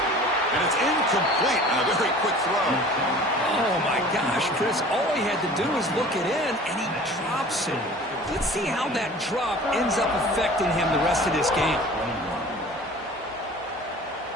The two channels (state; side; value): normal; both; correlation 0.44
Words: it's incomplete on a very quick throw. Oh, my gosh, Chris. All he had to do was look it in, and he drops it. Let's see how that drop ends up affecting him the rest of this game.